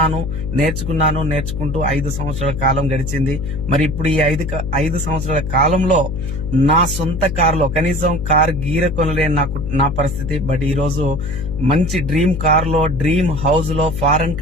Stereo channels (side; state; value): left; noise; hum, 4 dB below the sound